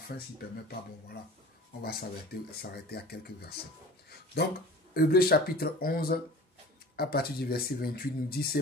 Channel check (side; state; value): both; normal; correlation 0.41